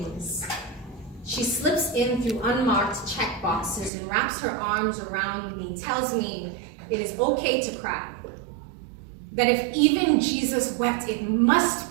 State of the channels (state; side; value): drops out; left; at 3.9 s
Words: she slips in through unmarked check boxes and wraps her arms around me, tells me it is okay to cry. That if even Jesus wept, it must